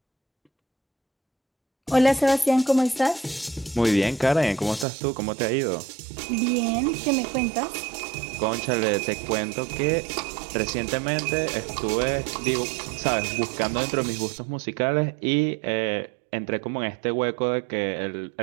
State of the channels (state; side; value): drops out; left; at 4.9 s